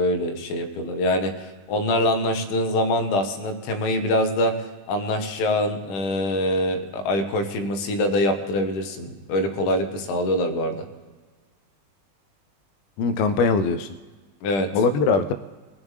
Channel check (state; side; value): late; right; 20 ms